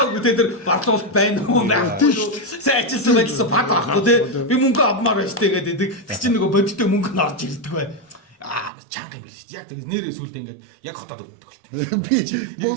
тэ тэр барлуулалт байна уу байхгүй шүү. Сайн ажилласан байлсан бад авахгүй тэ. Би мөнгө авмаар байна шүү дээ гэдэг. Тэр чинь нөгөө бодиттой мөнгө нь орж ирдэг бай. Чанга юм биш. Яг тэр нэрээ сүулдэ ингээд яг хотоод өвддөг болт. Би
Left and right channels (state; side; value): drops out; left; at 8.7 s